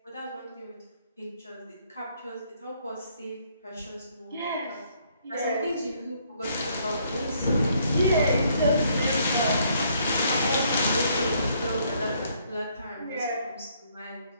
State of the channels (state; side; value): inverted; both; correlation -0.67